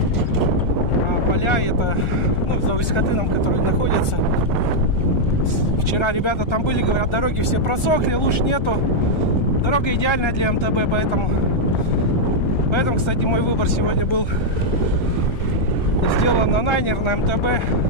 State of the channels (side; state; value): right; late; 1.3 ms